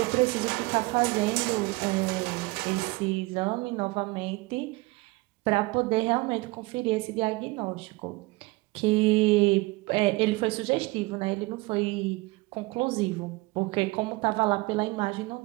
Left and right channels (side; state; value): left; quieter; 23.3 dB